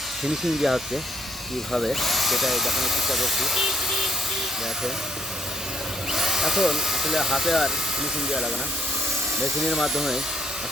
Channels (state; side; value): normal; both; correlation 0.69